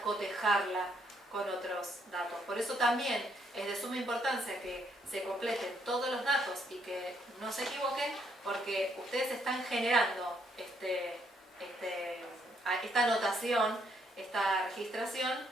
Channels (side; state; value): both; normal; correlation 0.72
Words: cotejarla con otros datos. Por eso también es de suma importancia que se completen todos los datos y que no se equivoquen, porque ustedes están generando esta anotación, esta registración,